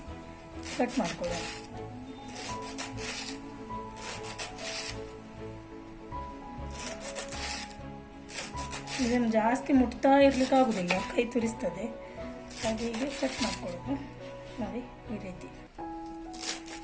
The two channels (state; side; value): identical; both; correlation 1.00